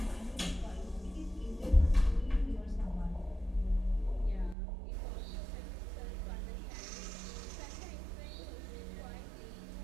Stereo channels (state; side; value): drops out; left; at 4.5 s